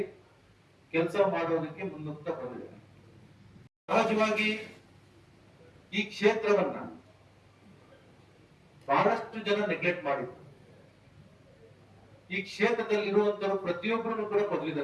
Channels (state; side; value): identical; both; correlation 1.00